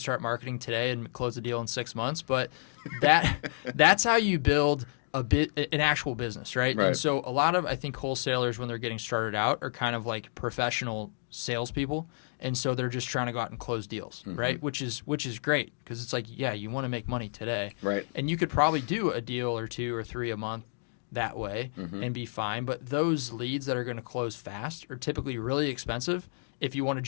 start marketing today and close the deal in 6 months, but that's how you build an actual business, right? Right. And so a lot of, I think, wholesalers, when they're getting started out, are kind of like professional salespeople, and so they're just trying to go out and close deals, right? Which is great, because it's like, you want to make money today, Right. and you could probably do a deal or 2 or 3 a month that way and be fine. But those leads that are going to close fast are typically really expensive if you want to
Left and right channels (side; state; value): right; silent; digital silence